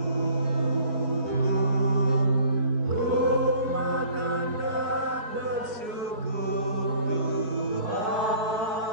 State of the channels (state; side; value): late; left; 4.6 ms